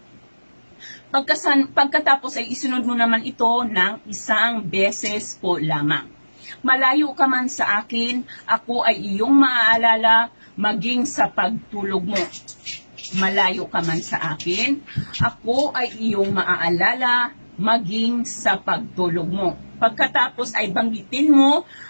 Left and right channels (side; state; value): both; inverted; correlation -1.00